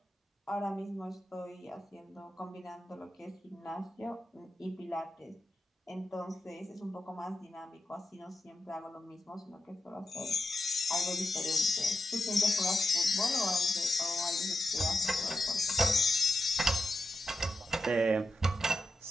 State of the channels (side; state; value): both; normal; correlation 0.89